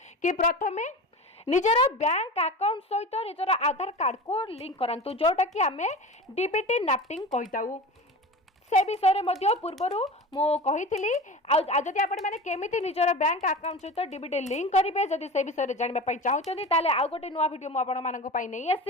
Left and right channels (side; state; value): both; normal; correlation 0.32